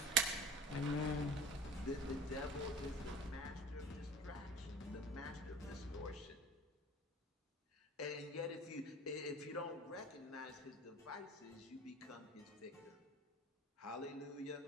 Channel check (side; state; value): both; normal; correlation 0.39